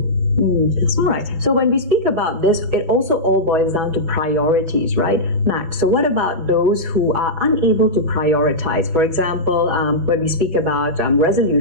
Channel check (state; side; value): late; left; 6.1 ms